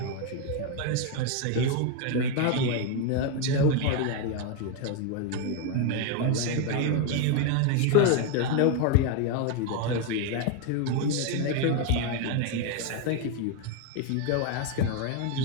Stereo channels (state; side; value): different; both; correlation 0.01